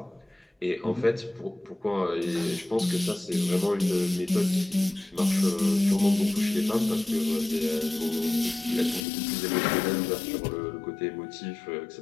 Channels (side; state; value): right; drops out; at 9.0 s